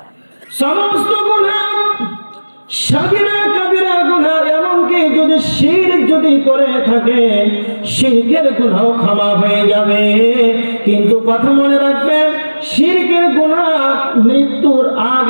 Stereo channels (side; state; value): both; inverted; correlation -1.00